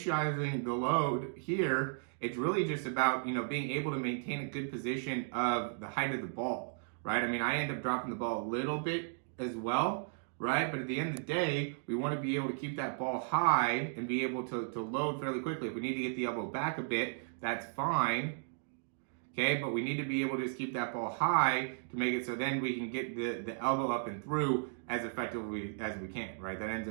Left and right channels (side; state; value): left; silent; digital silence